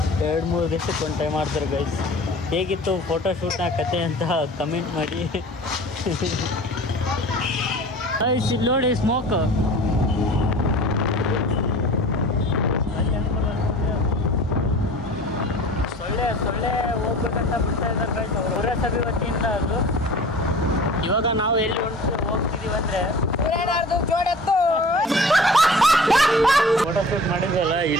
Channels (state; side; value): normal; both; correlation 0.42